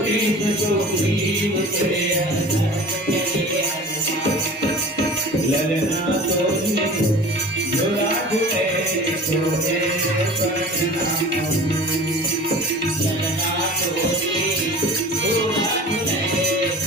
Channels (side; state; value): both; normal; correlation 0.40